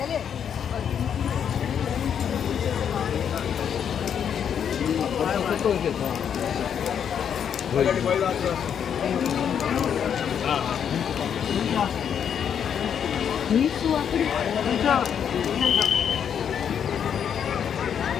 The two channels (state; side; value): quieter; right; 8.2 dB